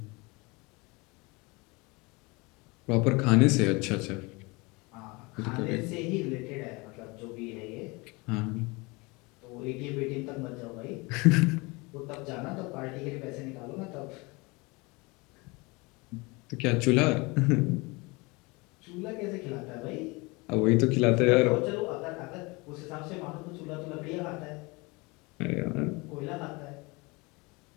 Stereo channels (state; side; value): quieter; right; 26.0 dB